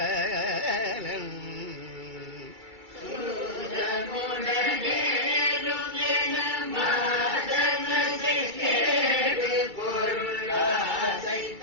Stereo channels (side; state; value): left; late; 2.3 ms